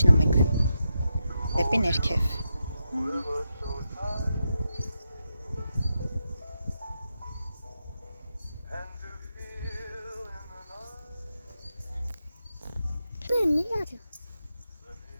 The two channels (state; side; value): inverted; both; correlation -0.86